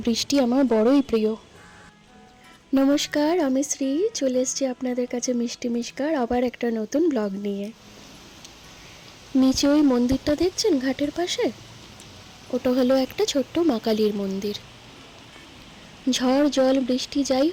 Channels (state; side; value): identical; both; correlation 1.00